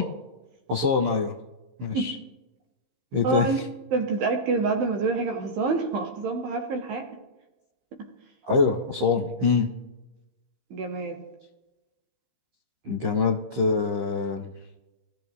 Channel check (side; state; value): left; late; 15 ms